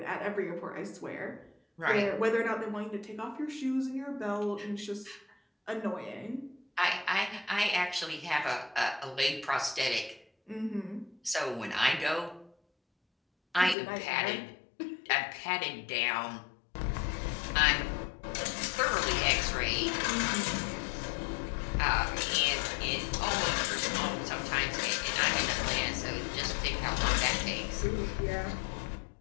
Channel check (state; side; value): drops out; right; at 13.8 s